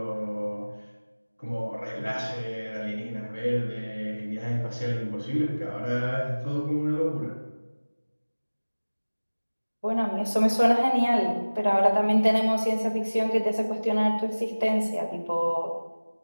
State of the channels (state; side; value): inverted; both; correlation -1.00